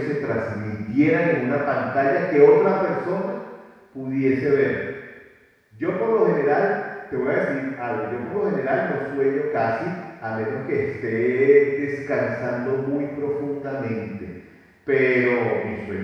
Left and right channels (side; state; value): both; identical; correlation 1.00